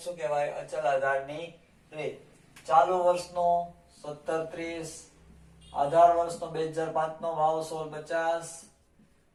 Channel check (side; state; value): both; identical; correlation 1.00